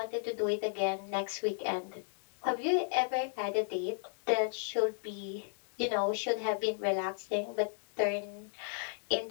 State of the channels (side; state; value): right; silent; digital silence